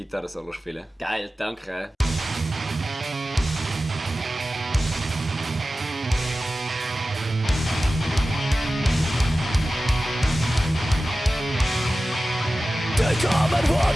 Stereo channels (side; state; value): both; normal; correlation 0.95